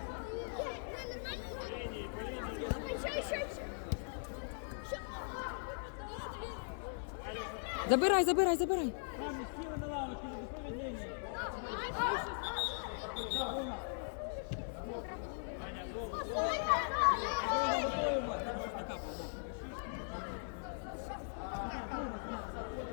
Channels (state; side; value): silent; right; digital silence